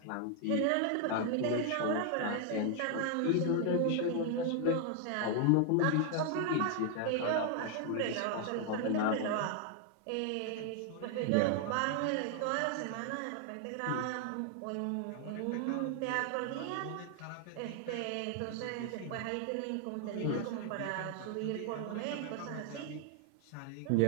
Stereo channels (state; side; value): different; both; correlation 0.00